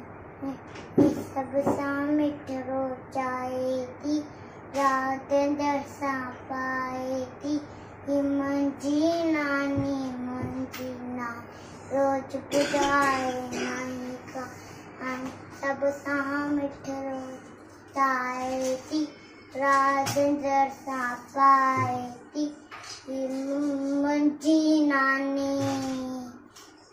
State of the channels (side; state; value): both; identical; correlation 1.00